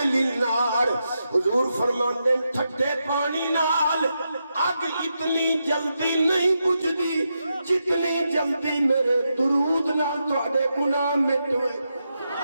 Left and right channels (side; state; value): both; inverted; correlation -0.85